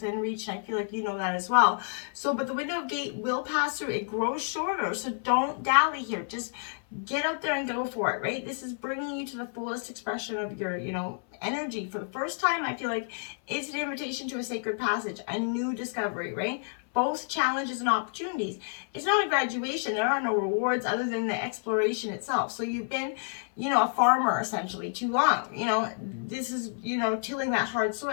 reach, and I feel like you know that as well. So, but the window of gate will pass through. It grows shorter, so don't dally here. Just get out there and go for it, right? This is bringing you to the fullest expression of your, energy. For the first time, I feel like it's an invitation to a sacred passage, a new discovery, right? Both challenges and opportunities. It's not a graduation. There are no rewards other than the exploration itself. So you've been, a farmer essentially too long. This is, tilling that hard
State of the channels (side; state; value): right; silent; 58 dB below the other